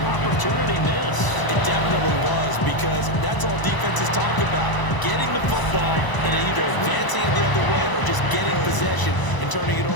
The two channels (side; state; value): right; late; 1.0 ms